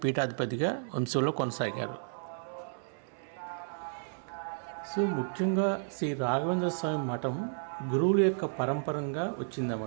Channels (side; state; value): left; silent; 56 dB below the other